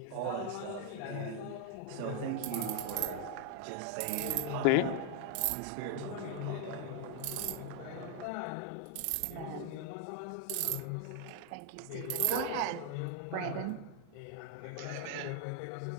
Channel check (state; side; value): different; both; correlation 0.00